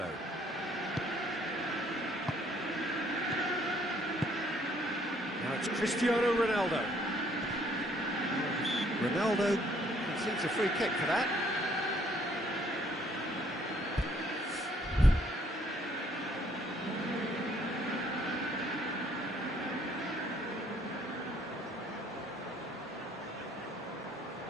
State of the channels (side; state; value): both; normal; correlation 0.64